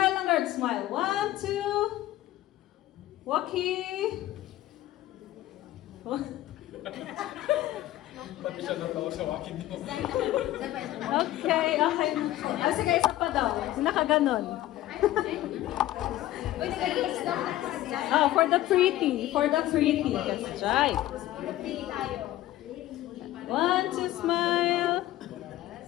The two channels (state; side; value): quieter; right; 14.8 dB